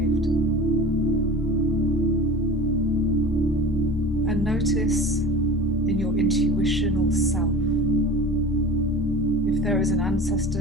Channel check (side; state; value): both; normal; correlation 0.35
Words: And notice in your intuitional self if there is an